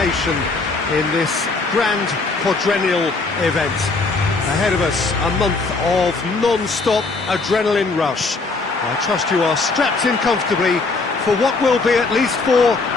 in this grand quadrennial event. Ahead of us, a month of non-stop adrenaline rush. I trust you are strapped in comfortably for what will be, at least for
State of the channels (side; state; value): right; quieter; 3.8 dB